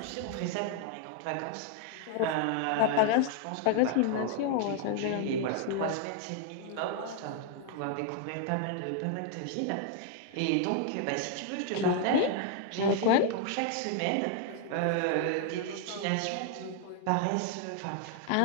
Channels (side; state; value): both; different; correlation 0.00